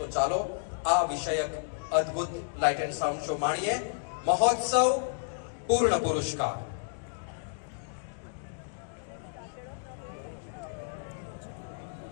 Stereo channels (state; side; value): silent; right; digital silence